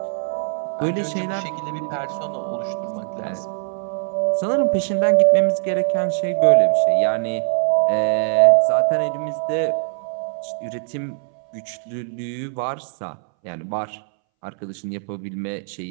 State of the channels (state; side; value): silent; left; 63 dB below the other